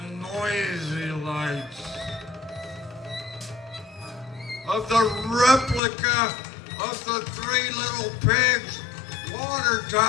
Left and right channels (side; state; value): right; drops out; at 5.8 s